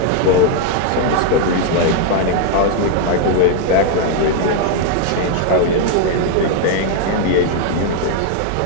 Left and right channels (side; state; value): both; different; correlation 0.01